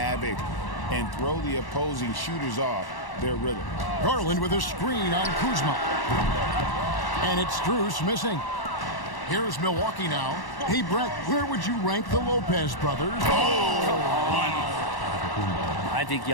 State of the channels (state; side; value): late; right; 1.1 ms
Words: and throw the opposing shooters off their rhythm. Garland with a screen on Kuzma. And it's Strus missing. Here's Milwaukee now. Hey, Brett, where would you rank the Lopez brothers? I think